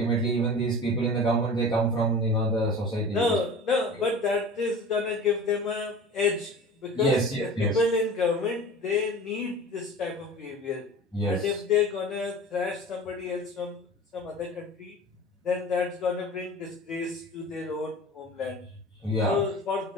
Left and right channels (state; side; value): normal; both; correlation 0.37